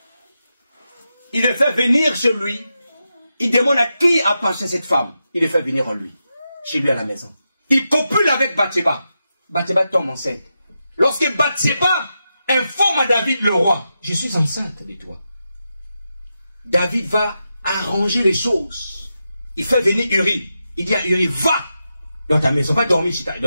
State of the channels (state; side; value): inverted; both; correlation -0.88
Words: Il le fait venir chez lui. Il demande à qui appartient cette femme. Il le fait venir en lui. Chez lui à la maison. Il copule avec Bathsheba. Bathsheba tombe enceinte. Lorsque Bathsheba informe à David le roi, je suis enceinte de toi. David va arranger les choses. Il fait venir Uri. Il dit à Uri, va dans ta maison, va dormir